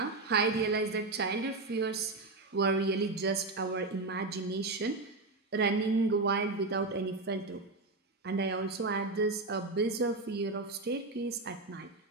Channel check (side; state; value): left; quieter; 3.3 dB